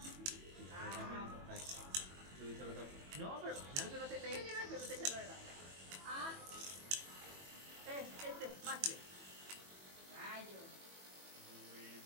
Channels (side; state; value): left; late; 21 ms